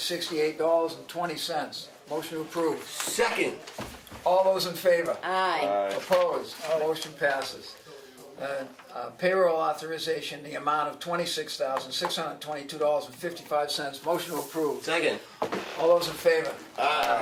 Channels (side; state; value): both; identical; correlation 1.00